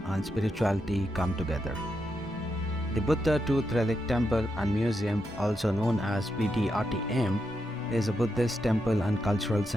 and spirituality come together. The Buddha Tooth Relic Temple and Museum, also known as BTRTM, is a Buddhist temple and cultural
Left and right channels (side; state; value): both; normal; correlation 0.84